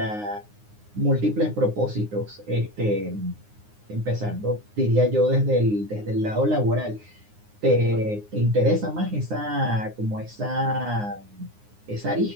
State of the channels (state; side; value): late; left; 9.6 ms